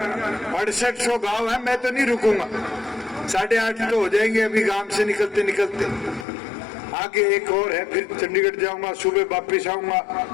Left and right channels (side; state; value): right; drops out; at 6.2 s